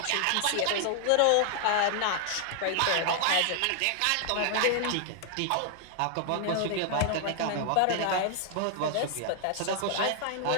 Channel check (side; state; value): both; different; correlation 0.00